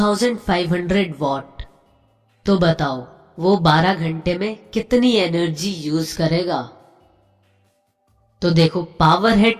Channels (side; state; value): both; identical; correlation 1.00